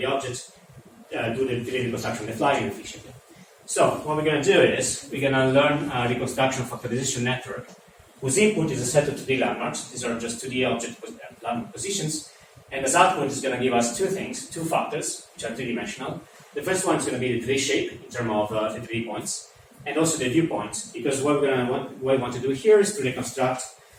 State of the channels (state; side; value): identical; both; correlation 1.00